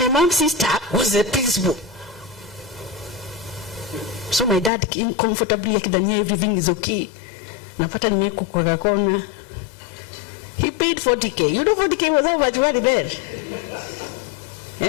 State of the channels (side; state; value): right; drops out; at 4.7 s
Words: mom's sister was the principal. So my dad came comfortably akidhania everything is okay. Napata nimeko kwa kona. He paid 40k. You know 40k was how much money there?